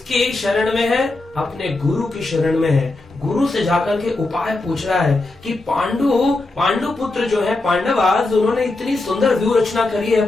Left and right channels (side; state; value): right; quieter; 3.1 dB